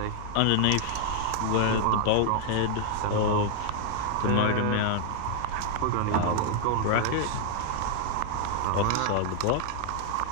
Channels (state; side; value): different; both; correlation 0.00